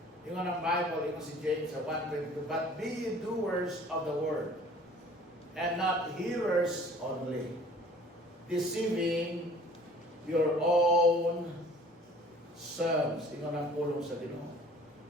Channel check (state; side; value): normal; both; correlation 0.50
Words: Yung ang Bible, yung si James sa 1:22, but be ye doers of the word, and not hearers only, deceiving your own selves. Ingon ang pulong sa Ginoo.